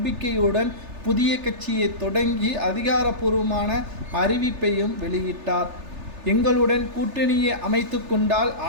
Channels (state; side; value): late; left; 3.3 ms